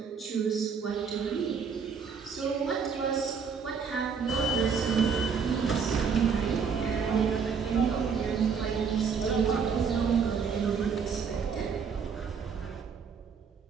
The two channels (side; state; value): left; quieter; 6.1 dB